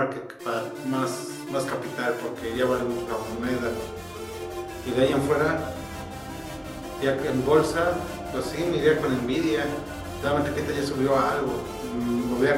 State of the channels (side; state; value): both; identical; correlation 1.00